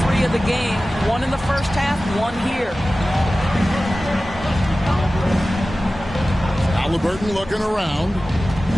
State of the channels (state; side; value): normal; both; correlation 0.96